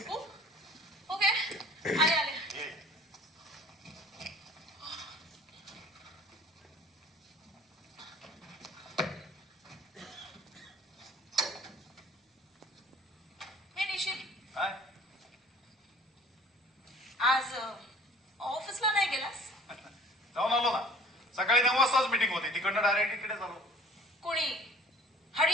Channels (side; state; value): both; normal; correlation 0.49